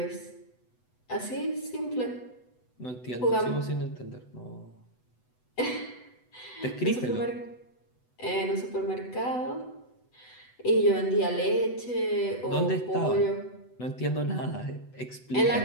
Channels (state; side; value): late; right; 8.0 ms